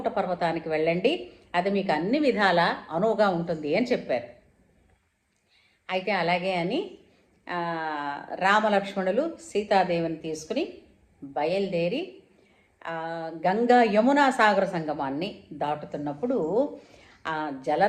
పర్వతానికి వెళ్ళండి, అది మీకు అన్ని విధాల అనువుగా ఉంటుంది అని చెప్పారు. అయితే అలాగే అని రామలక్ష్మణులు సీతాదేవిని తీసుకుని బయలుదేరి గంగా యమునా సాగర సంగమాన్ని దాటుతున్నప్పుడు ఆ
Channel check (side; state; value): both; identical; correlation 1.00